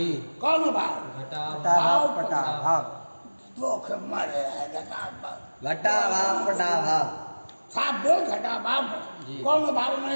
कौन अभाव? घटाभाव पटाभाव। दुख मरे है घटाभाव। घटाभाव पटाभाव साफ बोल घटाभाव। जी। कौन अभाव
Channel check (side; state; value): both; inverted; correlation -1.00